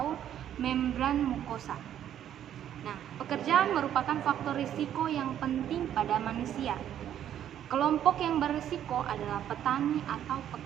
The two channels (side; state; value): left; quieter; 10.5 dB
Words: membran mukosa. Nah, pekerjaan merupakan faktor risiko yang penting pada manusia. Kelompok yang berisiko adalah petani atau